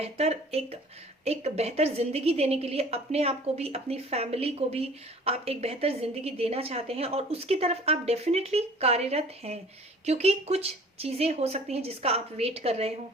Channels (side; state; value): both; normal; correlation 0.49